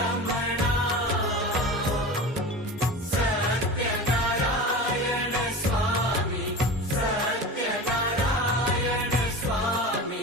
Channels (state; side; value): normal; both; correlation 0.31